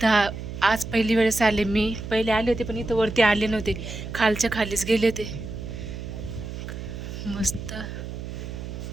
तर आज पहिली वेळेस आले. मी पहिले आले होते पण इथं वरती आले नव्हते, खालच्या खालीच गेले होते. मस्त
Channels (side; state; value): right; noise; hum, 8 dB below the sound